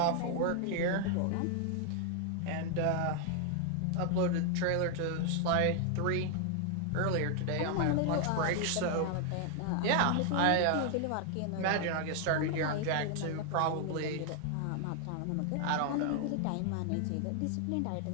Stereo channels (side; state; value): both; different; correlation 0.00